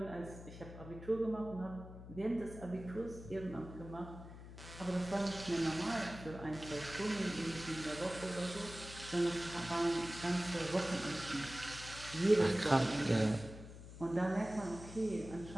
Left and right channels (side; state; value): left; noise; hum, 13 dB below the sound